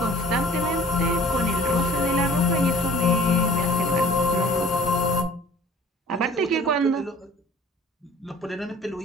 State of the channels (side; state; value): both; normal; correlation 0.49